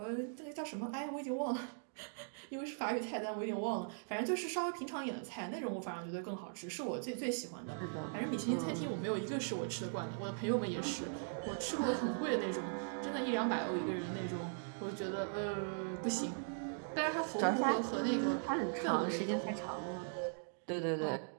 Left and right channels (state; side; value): silent; left; digital silence